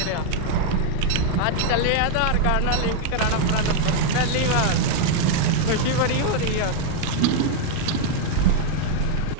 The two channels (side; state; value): both; different; correlation 0.00